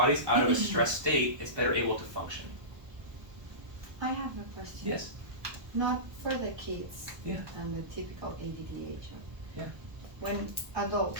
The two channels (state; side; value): late; left; 1.2 ms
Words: out of a stress state, it's better able to function. I have a question. Yes. Not for the kids. Yeah. And the typical ADDH. Yeah. When